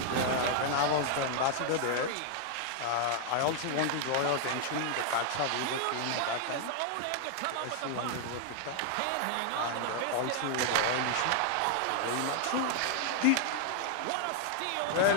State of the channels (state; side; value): different; both; correlation 0.00